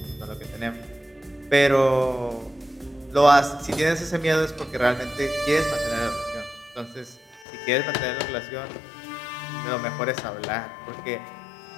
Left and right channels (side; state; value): right; drops out; at 7.5 s